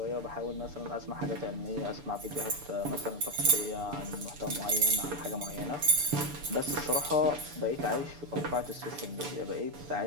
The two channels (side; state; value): left; late; 6.9 ms